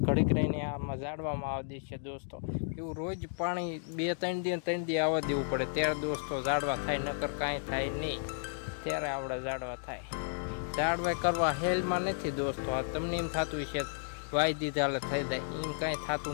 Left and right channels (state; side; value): silent; right; digital silence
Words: ઘડીક રહીને આમાં ઝાડવામાં આવતી છે દોસ્તો, એવું રોજ પાણી 2-3 દી આવવા દેવું પડે ત્યારે દોસ્તો ઝાડવા થાય, નકર કાંઈ થાય નહીં, ત્યારે આપણે ઝાડવા થાય। ઝાડવા કરવા હેલમાં નથી દોસ્તો, આ તમને એમ થતું છે વાઈ દીધા એટલે થઈ જાય, એમ કાંઈ